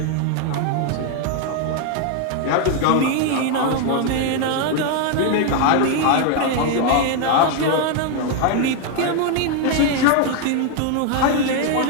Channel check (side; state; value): both; different; correlation 0.00